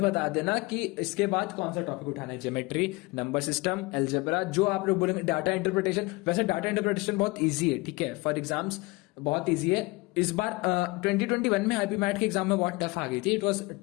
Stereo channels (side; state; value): right; quieter; 23.8 dB